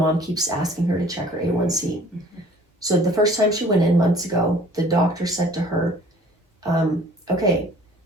keeps asking her to check her A1C. So the first time she went in months ago, the doctor said to her, okay,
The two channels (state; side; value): normal; both; correlation 0.52